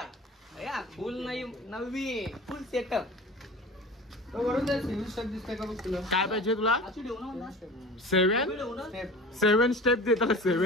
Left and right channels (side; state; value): both; normal; correlation 0.37